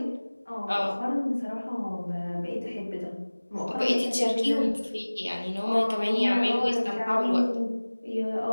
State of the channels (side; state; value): both; inverted; correlation -1.00